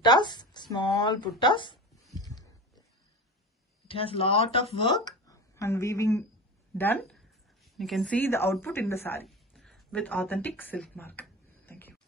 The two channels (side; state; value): both; normal; correlation 0.30